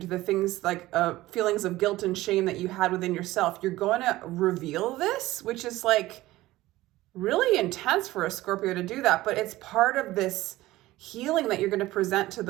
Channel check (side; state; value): left; quieter; 17.2 dB